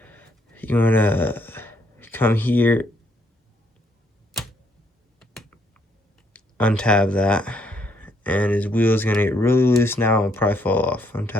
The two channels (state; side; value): normal; both; correlation 0.70